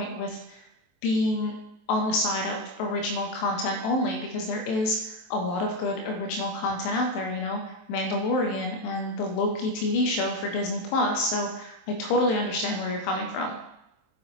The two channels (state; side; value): late; right; 23 ms